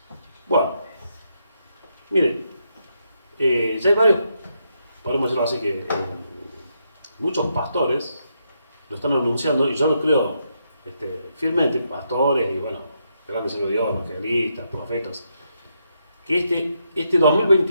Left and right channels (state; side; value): inverted; both; correlation -0.79